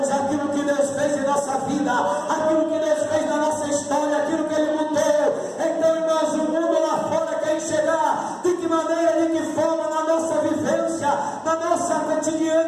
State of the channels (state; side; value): identical; both; correlation 1.00